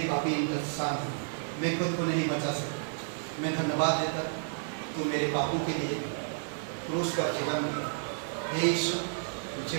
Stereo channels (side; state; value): left; silent; digital silence